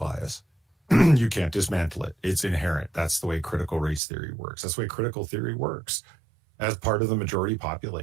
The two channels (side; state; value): left; drops out; at 4.0 s